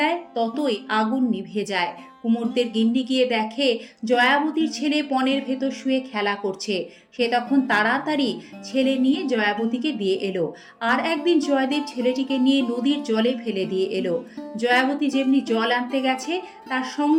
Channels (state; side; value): identical; both; correlation 1.00